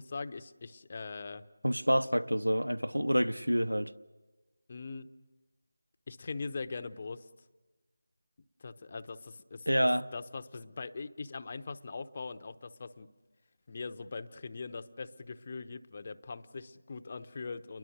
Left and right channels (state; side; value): inverted; both; correlation -0.98